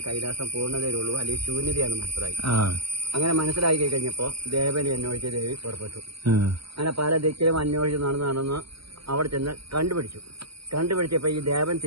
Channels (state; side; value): late; left; 0.75 ms